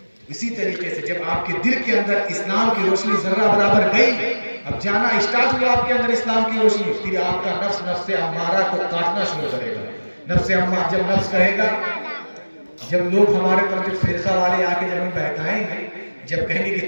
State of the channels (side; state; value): both; inverted; correlation -1.00